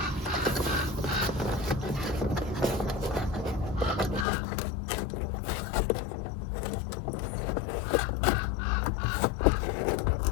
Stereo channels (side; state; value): right; drops out; at 4.2 s